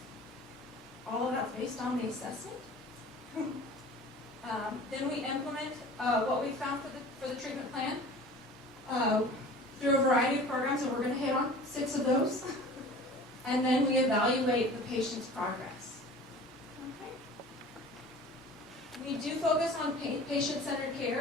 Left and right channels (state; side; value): normal; both; correlation 0.42